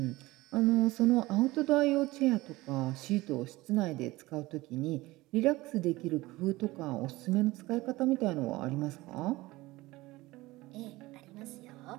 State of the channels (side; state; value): left; quieter; 19.6 dB